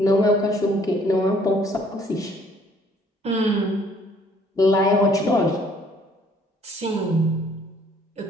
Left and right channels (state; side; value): normal; both; correlation 0.61